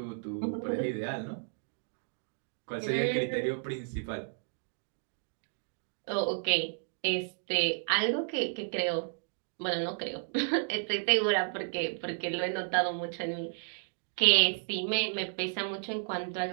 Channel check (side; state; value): left; silent; digital silence